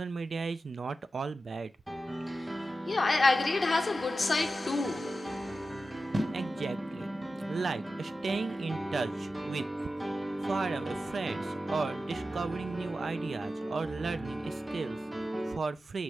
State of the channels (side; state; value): both; normal; correlation 0.92